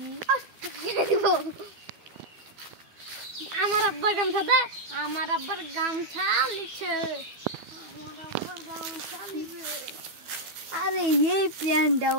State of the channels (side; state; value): left; late; 12 ms